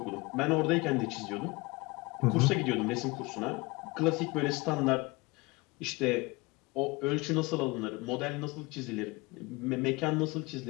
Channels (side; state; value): right; quieter; 24.5 dB